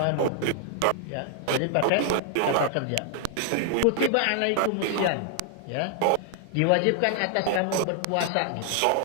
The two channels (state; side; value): different; both; correlation 0.00